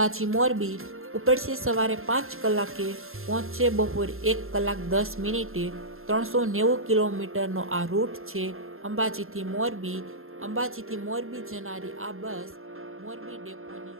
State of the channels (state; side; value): late; left; 0.61 ms